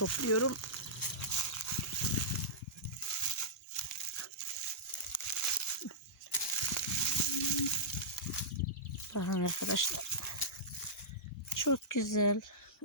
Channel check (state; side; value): normal; both; correlation -0.14